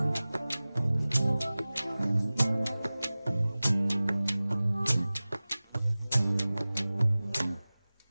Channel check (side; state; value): both; inverted; correlation -0.98